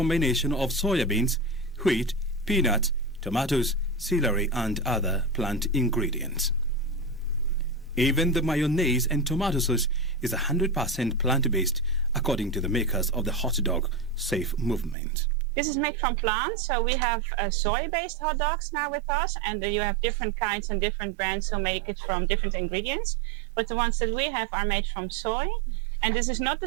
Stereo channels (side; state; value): left; drops out; at 15.0 s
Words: of soya beans, wheat, peanuts, tomatoes, celery, and other plant ingredients. Even the mayonnaise and tomato sauce is 100% plant-based, according to the makers of the hot dog safe movement. This is made from plants, so we have soy-based hot dogs now with us, and you have different kinds and different brands who make it from different ingredients. But the ones that we have are made from soy, and this is not the